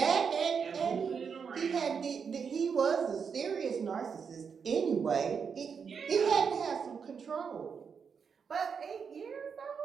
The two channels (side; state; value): left; quieter; 6.3 dB